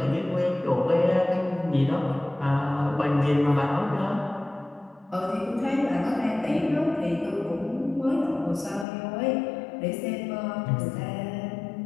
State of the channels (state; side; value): drops out; right; at 8.8 s